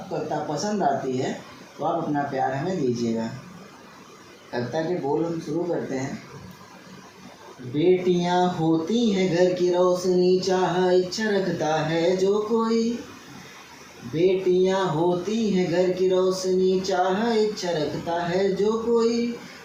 कविता पसंद आती है तो आप अपना प्यार हमें दीजिएगा। कविता के बोल हम शुरू करते हैं। बेटियां होती हैं घर की रोशनी, चाह इच्छा रखता है जो कोई। बेटियां होती हैं घर की रोशनी, चाह इच्छा रखता है जो कोई।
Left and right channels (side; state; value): both; identical; correlation 1.00